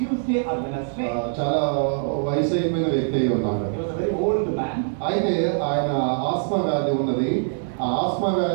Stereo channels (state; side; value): silent; left; digital silence